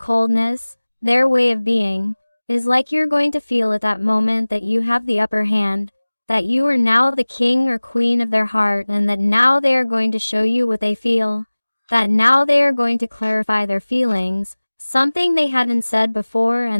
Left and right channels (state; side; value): inverted; both; correlation -1.00